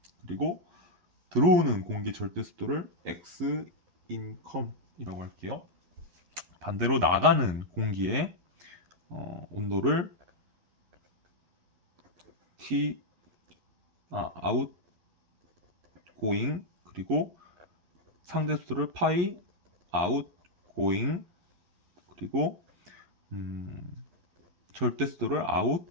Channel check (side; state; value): left; late; 11 ms